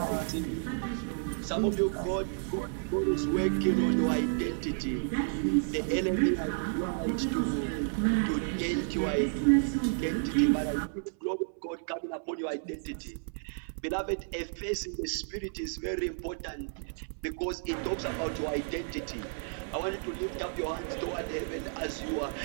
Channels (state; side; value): silent; left; 57 dB below the other